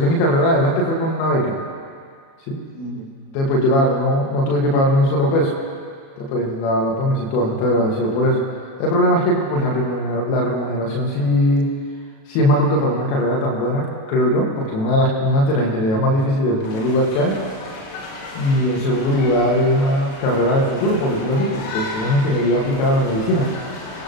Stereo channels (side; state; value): right; late; 37 ms